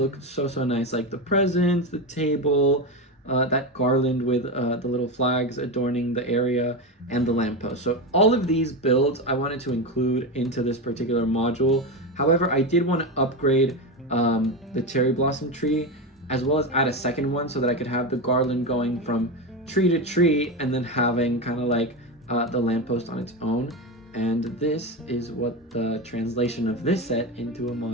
so nice, like the presents, the table, that garland with the little flags adorning the area, and the lamppost. So all of these builds I wanted to include into this particular module. However, I did want to upgrade the cherry blossom tree, as well as add a second one so that I could have the garland going from tree to tree, and then having kind of like the lamppost on its own. And this is what the translation of this set into a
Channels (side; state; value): both; normal; correlation 0.16